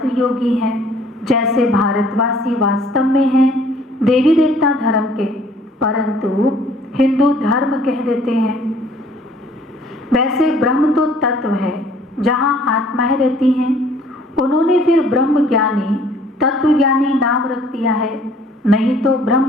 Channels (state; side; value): normal; both; correlation 0.57